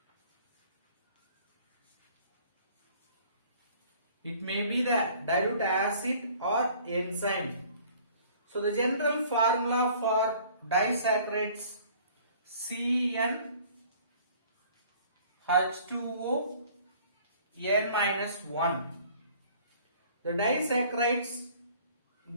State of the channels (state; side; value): inverted; both; correlation -0.53